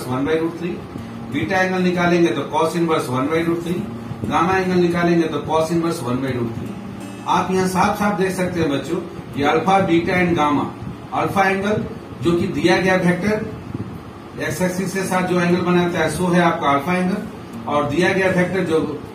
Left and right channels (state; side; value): identical; both; correlation 1.00